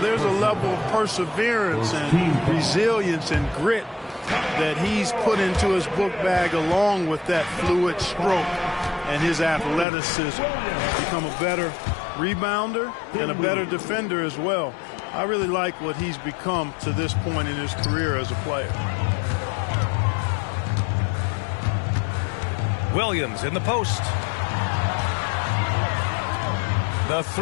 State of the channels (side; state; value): right; drops out; at 9.9 s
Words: a level of perseverance and resilience and grit that he's put into his book bag along with that fluid stroke and his athleticism. He's become a better rebounder and a better defender as well. I really like what he's become to this point in his career as a player. Williams in the post. The